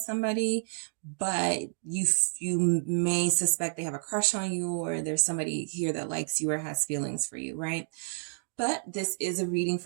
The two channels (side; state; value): left; silent; 58 dB below the other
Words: somebody, but you may suspect they have a crush on you, or there's somebody here that likes you or has feelings for you, right? But this is a reading